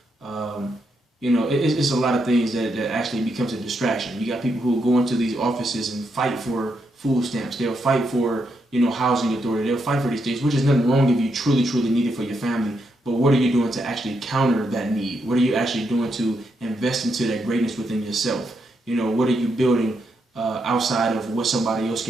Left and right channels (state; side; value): normal; both; correlation 0.80